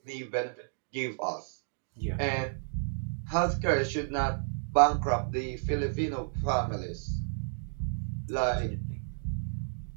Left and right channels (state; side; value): silent; left; 57 dB below the other